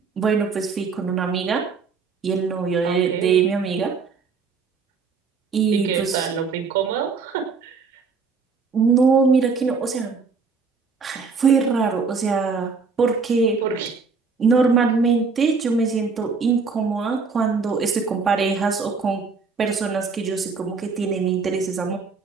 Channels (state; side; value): quieter; left; 4.9 dB